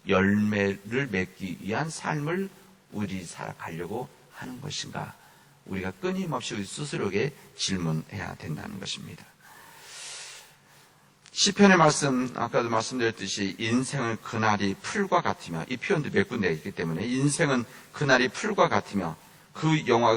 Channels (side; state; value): both; identical; correlation 1.00